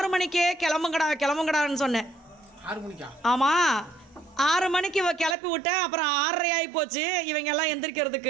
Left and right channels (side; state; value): left; drops out; at 5.4 s